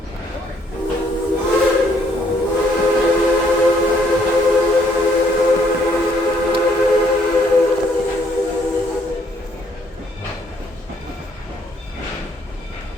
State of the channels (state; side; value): normal; both; correlation 0.67